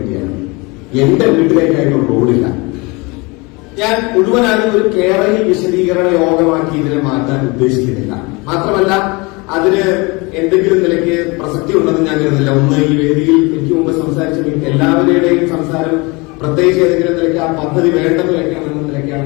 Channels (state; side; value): quieter; right; 26.6 dB